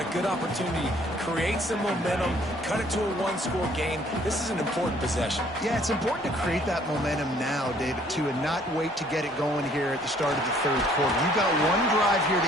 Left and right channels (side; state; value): both; normal; correlation 0.60